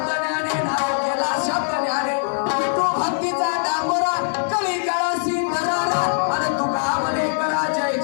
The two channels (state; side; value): silent; right; 58 dB below the other